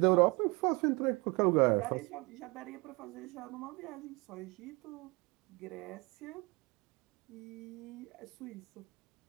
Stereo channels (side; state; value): left; quieter; 26.9 dB